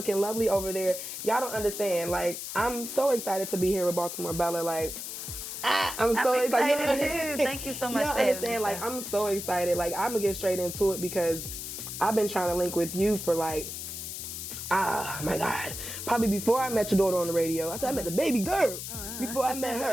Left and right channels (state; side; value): noise; left; hiss, 7 dB below the sound